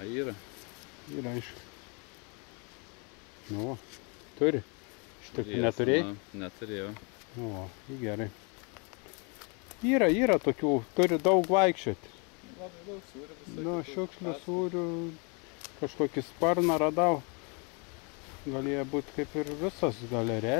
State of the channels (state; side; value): quieter; right; 34.3 dB